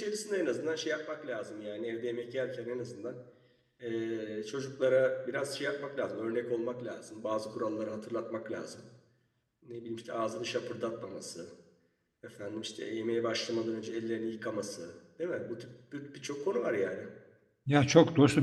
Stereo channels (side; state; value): both; identical; correlation 1.00